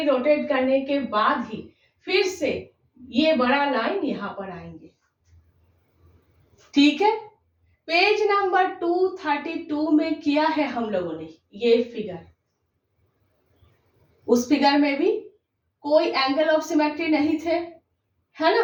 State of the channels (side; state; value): both; identical; correlation 1.00